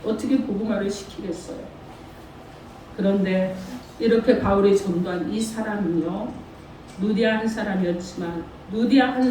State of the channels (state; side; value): identical; both; correlation 1.00